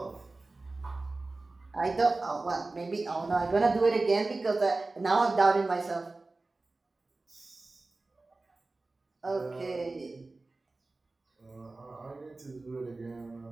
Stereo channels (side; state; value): left; quieter; 3.3 dB